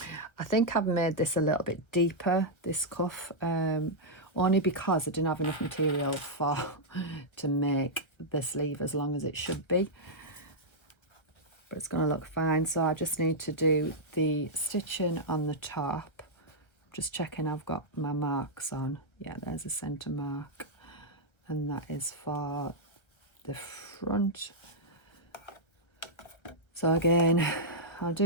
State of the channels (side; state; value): right; late; 1.3 ms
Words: I think I've made this a little bit deeper, this cuff, only because I didn't have enough material to make the sleeve as long as it should be. But it's going to look fine. So I just need to do the stitching on the top. Just checking I've got my marks on. Yeah, there's a centre mark. And that is for the front. So again, I'll